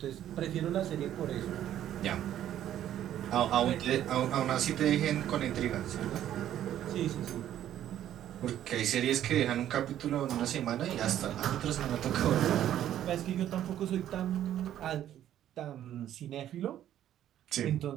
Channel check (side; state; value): left; quieter; 11.5 dB